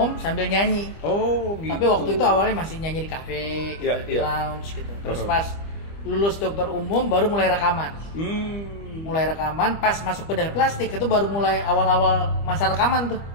sambil nyanyi. Oh gitu. Tapi waktu itu awalnya masih nyanyi di kafe gitu, di lounge gitu. Terus pas lulus dokter umum baru mulai rekaman. Mulai rekaman, pas masuk bedah plastik itu baru mulai awal-awal masa rekaman tuh.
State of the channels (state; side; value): late; right; 25 ms